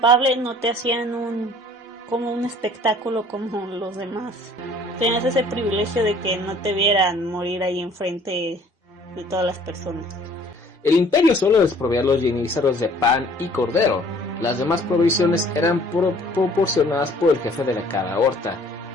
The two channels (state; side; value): normal; both; correlation 0.55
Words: no te hacían como un espectáculo como los demás. Tenías ese privilegio de que no te vieran morir ahí enfrente de todas las personas. El imperio solo desprovía a los yenízaros de pan y cordero. Las demás provisiones eran proporcionadas por el jefe de cada horta.